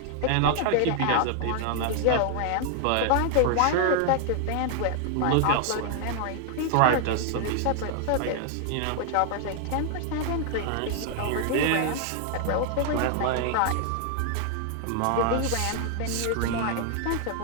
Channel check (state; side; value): different; both; correlation 0.00